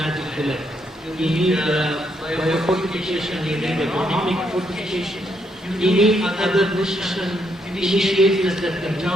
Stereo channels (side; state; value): both; normal; correlation 0.75